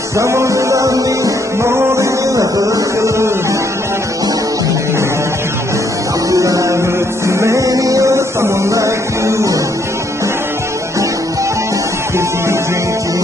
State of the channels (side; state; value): both; normal; correlation 0.71